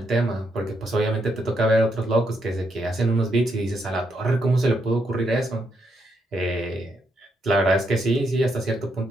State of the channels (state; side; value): normal; both; correlation 0.78